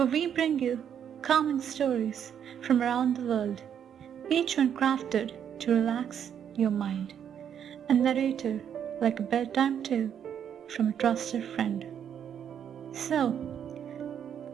we bring you calming stories from around the world, each one crafted to relax your mind, and narrated like a bedtime tale from a trusted friend. So,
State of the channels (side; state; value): left; quieter; 8.7 dB